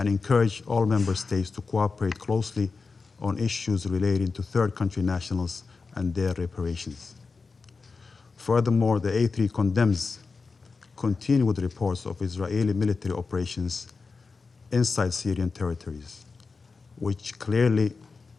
encourage all member states to cooperate closely on issues relating to third country nationals and their reparations. Furthermore, the A3 condemns continued reports of Israeli military operations inside Syrian territories, which clearly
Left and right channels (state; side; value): quieter; right; 4.4 dB